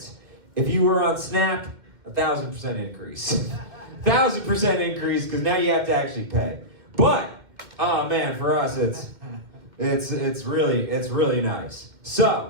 If you were on Snap, 1,000% increase. 1,000% increase, because now you have to actually pay. But oh man, for us it's really nice.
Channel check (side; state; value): left; late; 2.1 ms